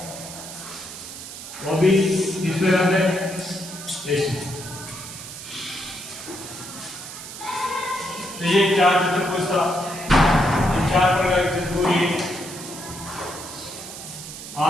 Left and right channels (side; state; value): right; noise; hiss, 11 dB below the sound